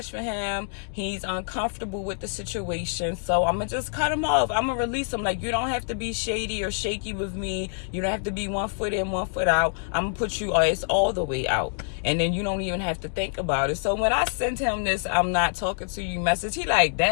for him. He's uncomfortable with the situation. So I'm going to just cut him off. I'm going to release him. Like, you don't have to be shady or shaky with me. You don't have to be 1 foot in, 1 foot out. I'm going to put you all the way out. And then you don't even have to think about it. So when I sent him this, I'm not talking to you message, he like,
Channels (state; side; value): silent; right; digital silence